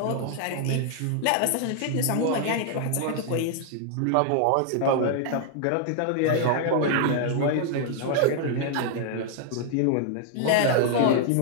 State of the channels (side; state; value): both; different; correlation 0.00